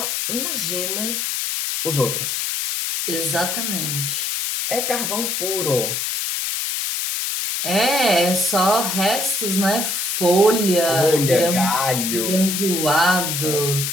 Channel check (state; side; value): noise; left; hiss, 1 dB below the sound